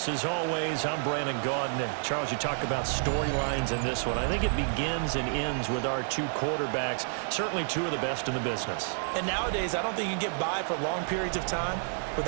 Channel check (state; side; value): silent; left; digital silence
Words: as always, I'm Brandon Gaudin. And Charles, you talk about storylines in this one. I think it begins and ends with our two quarterbacks, certainly two of the best in the business. And nowadays, I don't think you can get by for long periods of time